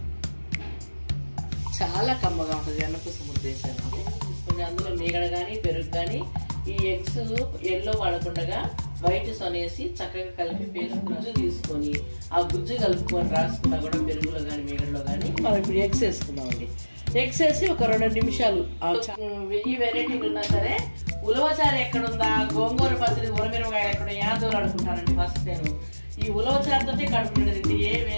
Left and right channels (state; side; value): inverted; both; correlation -1.00